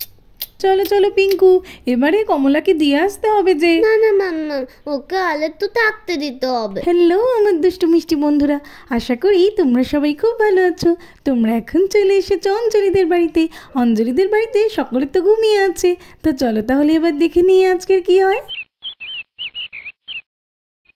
চলো চলো পিঙ্কু, এবারে কমলাকে দিয়ে আসতে হবে যে। না না মাম্মা, ওকে আলে তো থাকতে দিতে হবে। হ্যালো আমার দুষ্টু মিষ্টি বন্ধুরা, আশা করি তোমরা সবাই খুব ভালো আছো। তোমরা এখন চলে এসেছো অঞ্জলিদের বাড়িতে। অঞ্জলিদের বাড়িতে সকলে তো ঘুমিয়ে আছে। তো চলো তাহলে এবার দেখে নিই আজকের কি হয়।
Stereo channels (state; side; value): identical; both; correlation 1.00